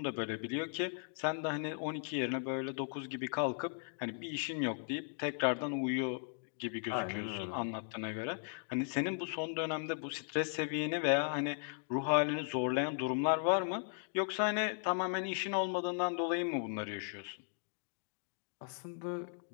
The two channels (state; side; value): silent; right; 53 dB below the other